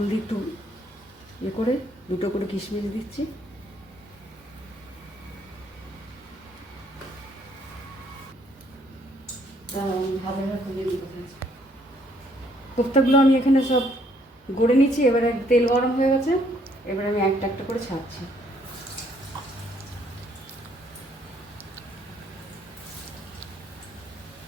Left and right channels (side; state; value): both; normal; correlation 0.67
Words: দিয়ে একটু করে 2টো করে কিশমিশ দিচ্ছি, কোপ্তাগুলো আমি এখানে সব গড়ে নিচ্ছি। এবারে তেল গরম হয়ে গেছে, এবারে আমি একটা একটা করে ছাড়ছি।